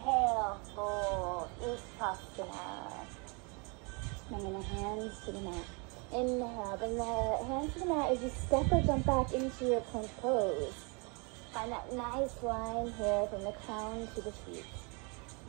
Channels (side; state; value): left; quieter; 32.5 dB